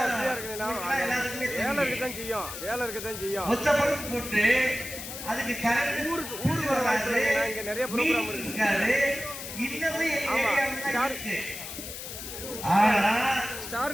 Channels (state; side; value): noise; left; hiss, 9 dB below the sound